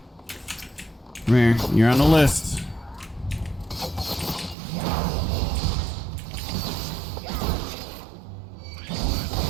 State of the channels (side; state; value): left; drops out; at 4.5 s